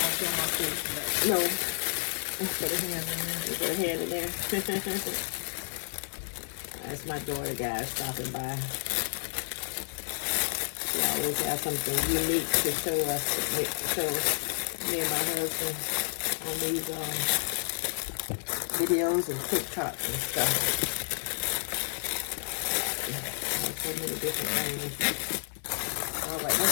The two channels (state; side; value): silent; right; digital silence